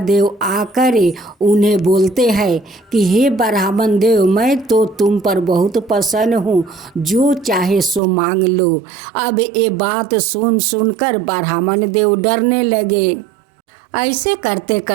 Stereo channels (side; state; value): left; drops out; at 8.0 s